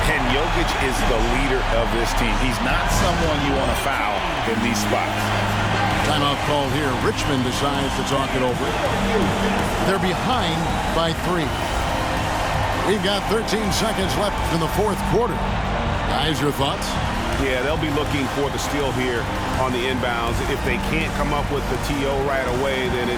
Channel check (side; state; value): both; identical; correlation 1.00